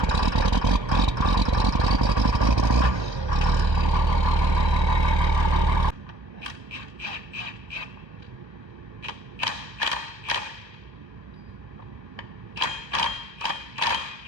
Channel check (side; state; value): left; late; 1.3 ms